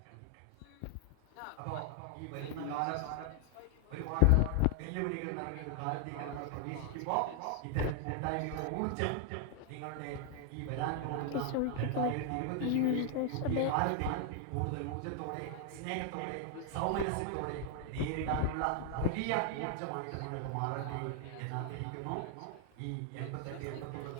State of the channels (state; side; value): different; both; correlation 0.00